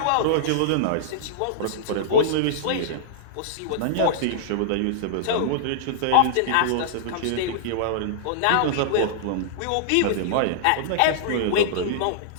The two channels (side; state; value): both; different; correlation -0.02